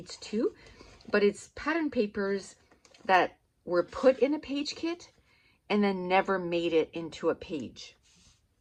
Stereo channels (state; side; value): identical; both; correlation 1.00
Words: too, but it's pattern papers that were put in a page kit and then never made it into a page.